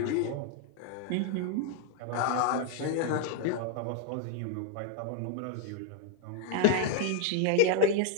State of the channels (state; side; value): different; both; correlation 0.00